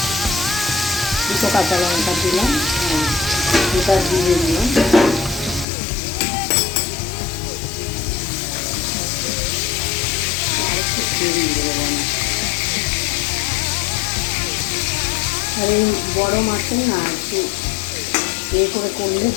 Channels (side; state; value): right; drops out; at 5.7 s